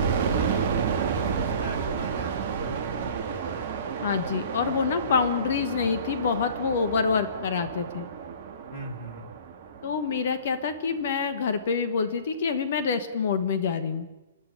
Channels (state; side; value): inverted; both; correlation -0.46